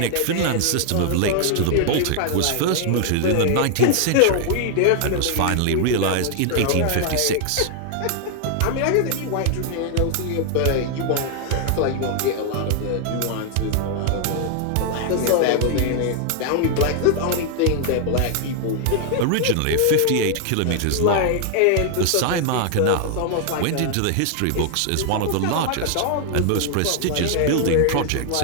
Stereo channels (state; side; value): different; both; correlation 0.00